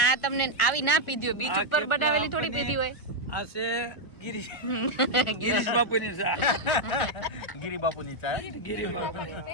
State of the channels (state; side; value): late; right; 1.4 ms